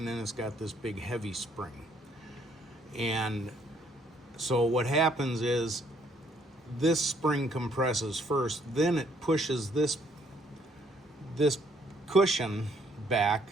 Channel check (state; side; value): normal; both; correlation 0.67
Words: then it's got this big heavy spring. And so what happens is, this spring compresses first, then it pushes this cushion back.